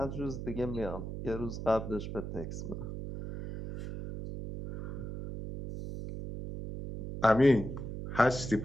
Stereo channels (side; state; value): right; noise; hum, 7 dB below the sound